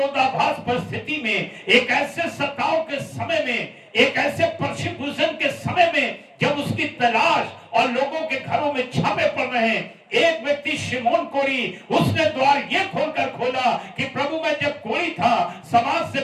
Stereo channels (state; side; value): identical; both; correlation 1.00